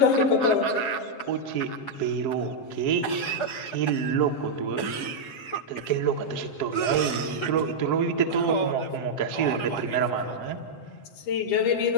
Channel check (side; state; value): right; late; 7.6 ms